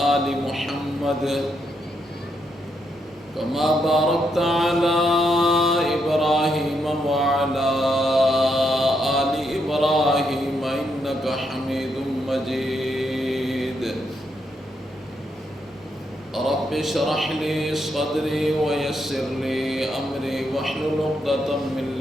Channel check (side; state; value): both; normal; correlation 0.79